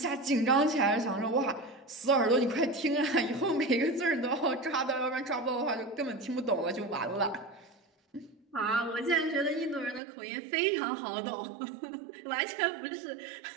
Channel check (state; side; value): drops out; left; at 10.0 s